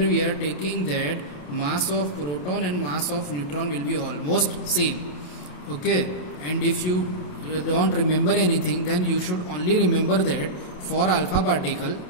are taking that mass of proton and mass of neutron will be almost same. Okay, and if you don't remember anything, then you should only remember that for alpha particle,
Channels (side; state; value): right; late; 27 ms